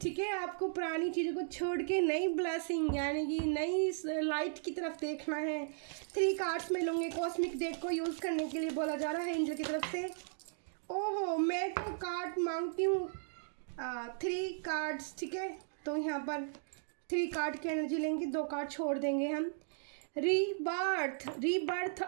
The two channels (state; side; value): silent; left; digital silence